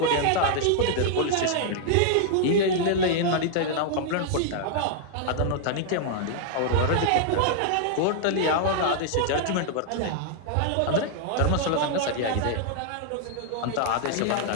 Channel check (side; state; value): both; different; correlation 0.00